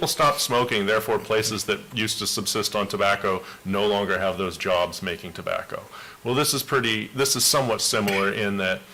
stop smoking, therefore places that used to subsist on tobacco no longer have those jobs making tobacco. Well, this is somewhat similar in that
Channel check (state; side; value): identical; both; correlation 1.00